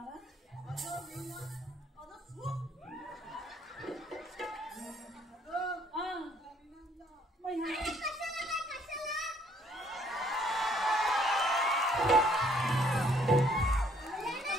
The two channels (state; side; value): normal; both; correlation 0.64